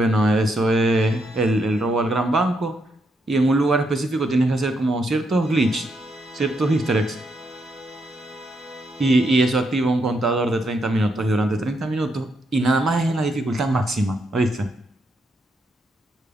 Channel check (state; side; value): normal; both; correlation 0.79